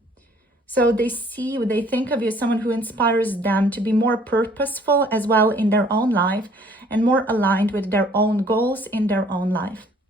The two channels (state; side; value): normal; both; correlation 0.58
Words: So they see you, they think of you as someone who inspires them to be more purposeful as well in their own life and more aligned with their own goals in their own life.